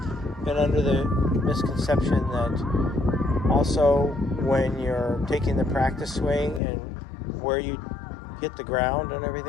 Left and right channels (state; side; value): drops out; right; at 6.6 s